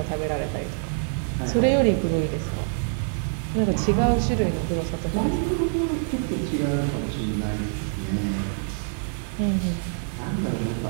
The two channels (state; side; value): silent; left; 55 dB below the other